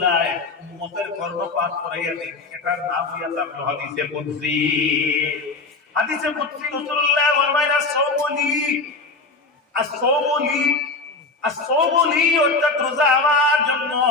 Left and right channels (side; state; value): right; quieter; 3.7 dB